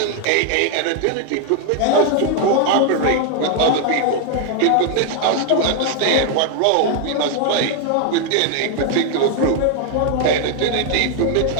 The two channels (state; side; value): different; both; correlation 0.00